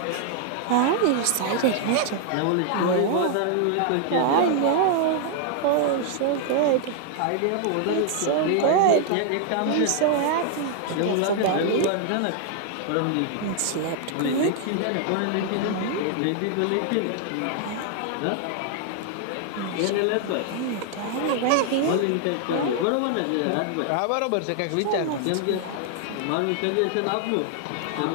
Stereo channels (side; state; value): both; different; correlation 0.00